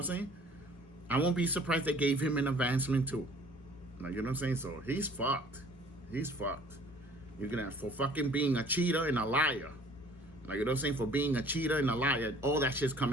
saying? I won't be surprised they gave him an advancement too. Like, you know what I'm saying? So he's fucked. He's fucked. You're gonna, for fucking being a cheater and a liar. Like, you know what I'm saying? For being a cheater and a liar, all that shit's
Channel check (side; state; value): both; normal; correlation 0.54